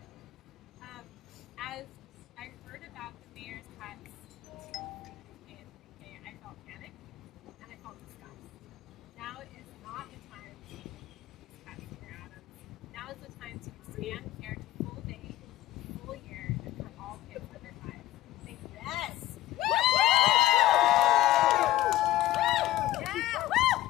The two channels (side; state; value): right; quieter; 15.0 dB